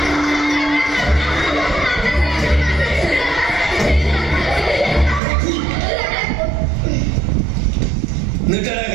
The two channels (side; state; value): left; drops out; at 5.2 s